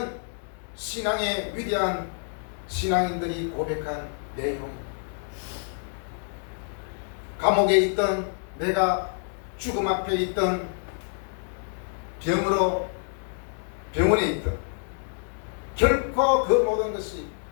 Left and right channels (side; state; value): right; silent; 60 dB below the other